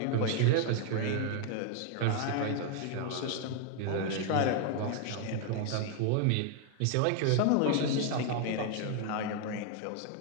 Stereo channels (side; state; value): both; different; correlation 0.00